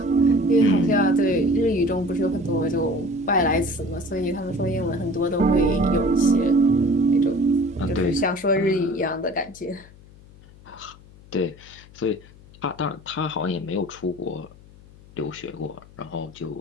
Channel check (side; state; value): left; noise; hum, 23 dB below the sound